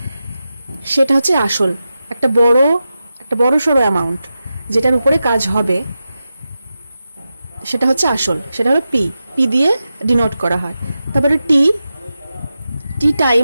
সেটা হচ্ছে আসল, একটা বড় সড়ো অ্যামাউন্ট যেটার উপরে কাজ হবে সেটা হচ্ছে আসল, সেটা হলো পি, পি দিয়ে ডিনোট করা হয়। তারপরে টি, টি টাইম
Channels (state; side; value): inverted; both; correlation -0.91